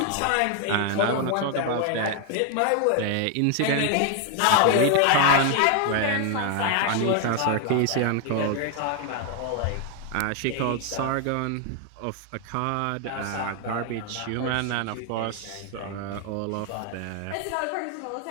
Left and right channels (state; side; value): different; both; correlation 0.00